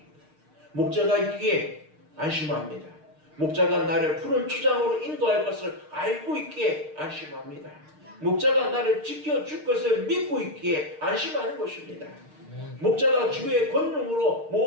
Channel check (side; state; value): left; late; 6.6 ms